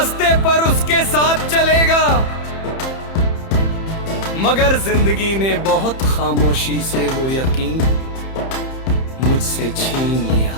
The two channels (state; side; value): late; right; 30 ms